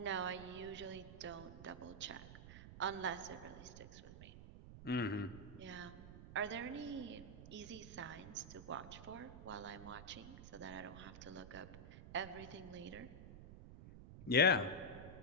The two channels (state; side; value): noise; right; rumble, 13 dB below the sound